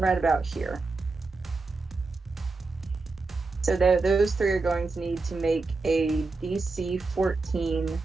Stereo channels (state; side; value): quieter; left; 3.8 dB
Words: about here. So those 3 are going to need to make a DC 14